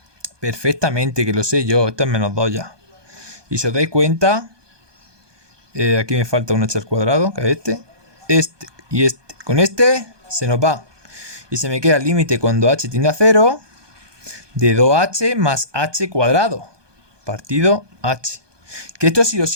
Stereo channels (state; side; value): late; left; 1.2 ms